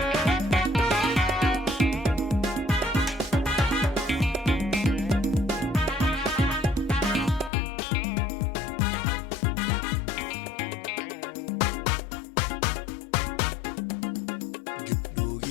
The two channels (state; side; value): drops out; right; at 7.5 s